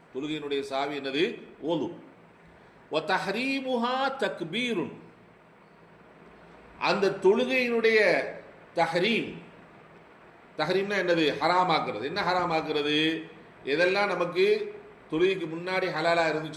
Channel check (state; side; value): identical; both; correlation 1.00